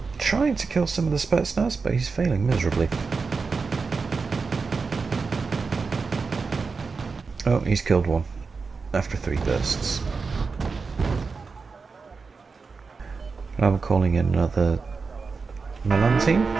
Trying to kill some of the Spetsnaz, but he's failing miserably. Oh, he's killed one after 3 bursts. I'm calling in another Milan team.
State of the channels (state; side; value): quieter; left; 4.7 dB